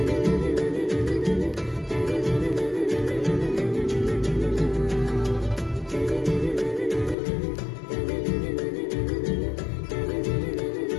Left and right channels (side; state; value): right; drops out; at 7.2 s